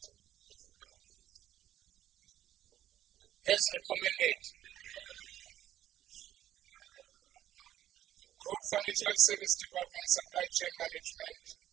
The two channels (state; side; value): quieter; left; 12.1 dB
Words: As recommended. Group Financial Service Department Supply Chain Management